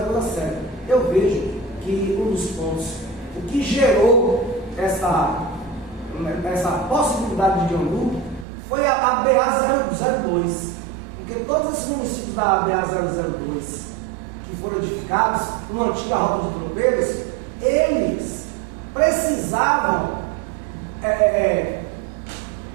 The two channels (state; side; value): drops out; left; at 8.5 s